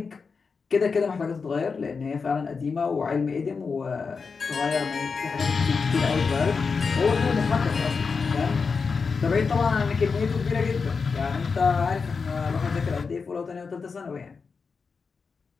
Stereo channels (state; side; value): quieter; right; 5.1 dB